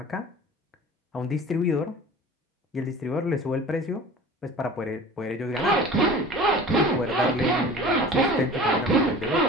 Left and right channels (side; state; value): both; normal; correlation 0.40